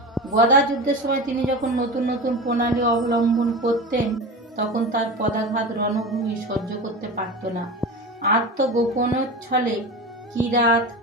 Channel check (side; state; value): both; normal; correlation 0.28